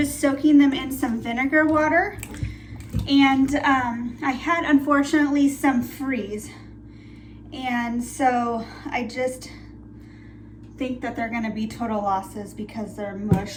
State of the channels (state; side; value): identical; both; correlation 1.00